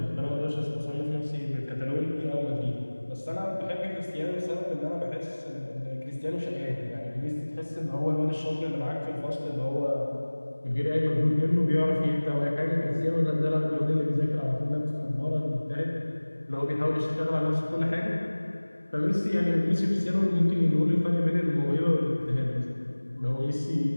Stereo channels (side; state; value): both; inverted; correlation -1.00